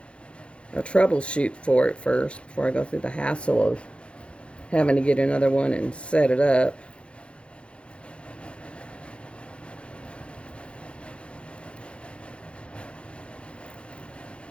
a troubleshoot for it first before I go through the hassle of having to get another one and set it up.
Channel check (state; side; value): late; right; 0.059 ms